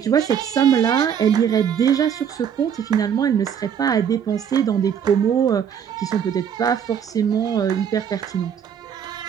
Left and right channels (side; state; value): left; quieter; 8.2 dB